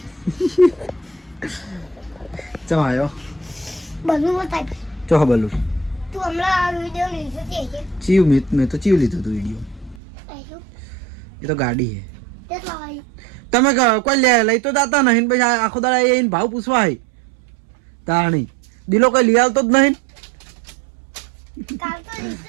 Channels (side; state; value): left; drops out; at 10.0 s